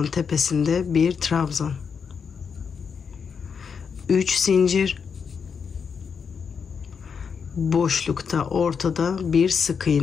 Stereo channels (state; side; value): quieter; right; 6.3 dB